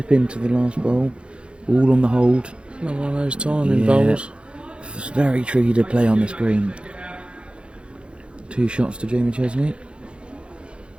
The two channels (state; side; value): late; left; 0.057 ms